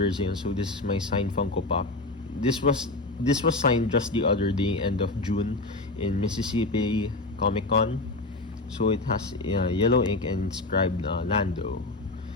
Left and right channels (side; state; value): right; quieter; 3.1 dB